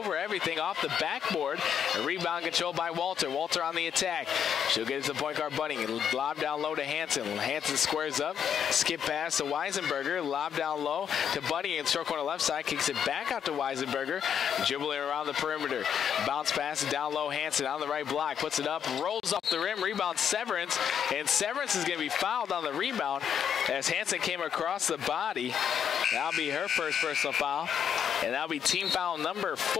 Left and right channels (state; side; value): quieter; right; 8.3 dB